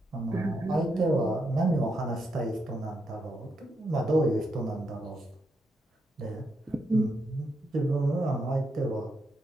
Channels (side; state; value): both; normal; correlation 0.81